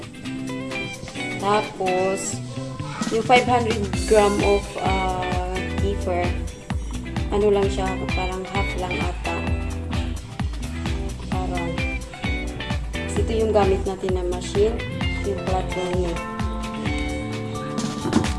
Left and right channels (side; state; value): both; identical; correlation 1.00